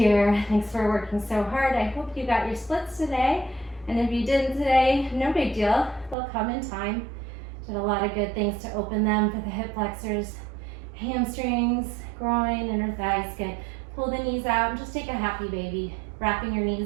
Thanks for working so hard. I hope you got your splits today. And if you didn't today, no big deal. They'll come in time. Did a lot of good things to open them for the hip flexors, hamstrings, groin, inner thighs. Good. Pull the knees out and just take a happy baby. Wrapping your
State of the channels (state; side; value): drops out; left; at 6.2 s